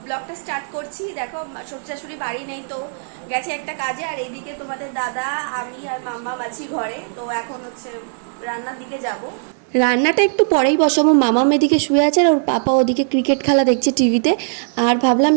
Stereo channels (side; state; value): left; silent; 61 dB below the other